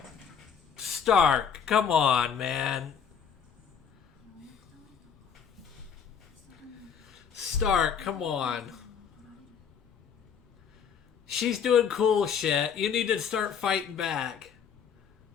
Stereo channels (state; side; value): quieter; right; 7.3 dB